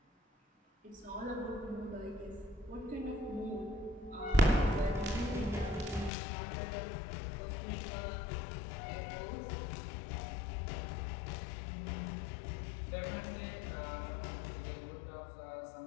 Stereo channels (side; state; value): right; drops out; at 6.1 s